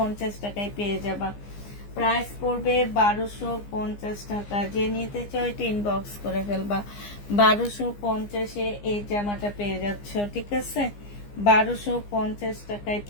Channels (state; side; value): late; right; 15 ms